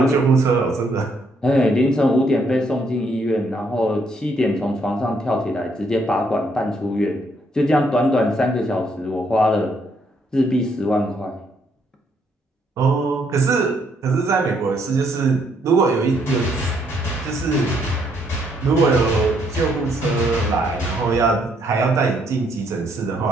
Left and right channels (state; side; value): normal; both; correlation 0.71